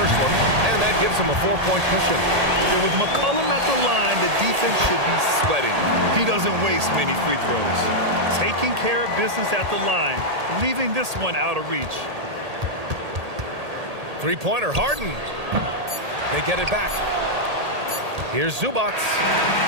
one, and that gives him a 4-point cushion. Yeah, with McCollum at the line, the defense should be sweating. He doesn't waste many free throws. Taking care of business at the line, leaving this one out of reach. Three-pointer, Harden. They get it back. Here's Zubac.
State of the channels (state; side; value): late; left; 1.8 ms